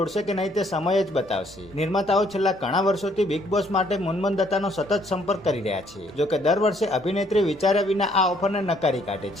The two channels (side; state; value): both; normal; correlation 0.66